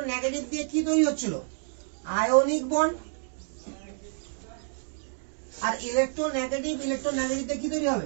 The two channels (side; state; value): left; silent; digital silence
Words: নেগেটিভ দিয়ে কি তৈরি হচ্ছিল? Ionic bond. আর ইলেকট্রো নেগেটিভ দিয়ে কি তৈরি